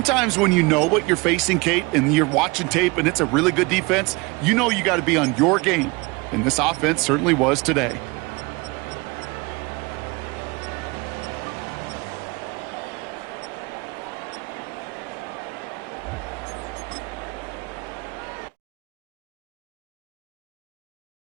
when you know what you're facing, Kate, and you're watching tape and it's a really good defense, you know you got to be on your game. And this offense certainly was today.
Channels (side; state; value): left; quieter; 26.1 dB